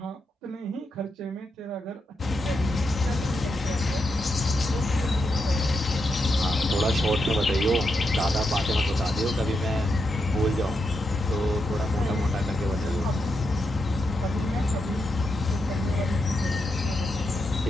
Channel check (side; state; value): both; normal; correlation 0.84